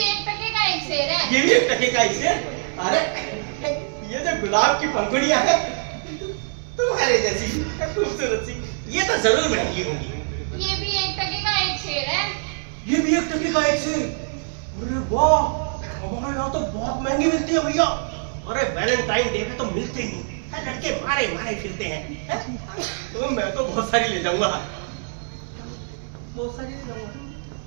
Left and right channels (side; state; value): left; silent; digital silence